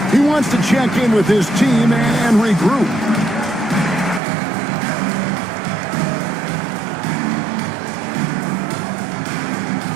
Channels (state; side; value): drops out; left; at 4.2 s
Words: He wants to check in with his team and regroup.